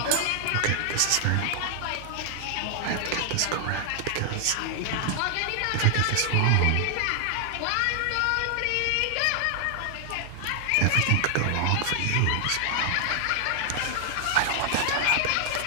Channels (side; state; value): both; different; correlation 0.00